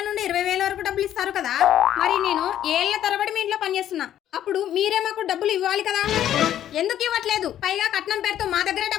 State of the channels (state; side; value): quieter; right; 11.2 dB